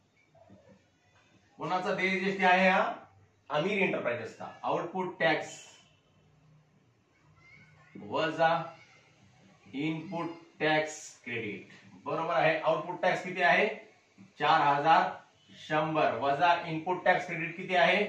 कोणाचा देय जीएसटी आहे हा? अमीर एंटरप्राइजेसचा. आउटपुट टॅक्स वजा इनपुट टॅक्स क्रेडिट बरोबर आहे. आउटपुट टॅक्स किती आहे? 4,100 वजा इनपुट टॅक्स क्रेडिट किती आहे?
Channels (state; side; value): identical; both; correlation 1.00